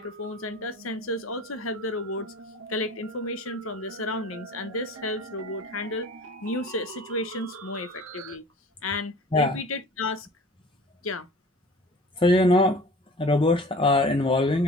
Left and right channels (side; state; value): both; normal; correlation 0.42